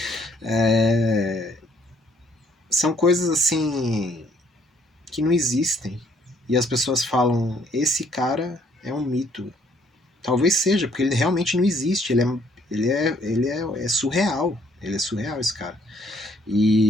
são coisas assim que não existem. E as pessoas falam, esse cara é um mito. Talvez seja, porque ele realmente não existe. É surreal. Ele é surreal, esse cara.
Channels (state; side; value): normal; both; correlation 0.65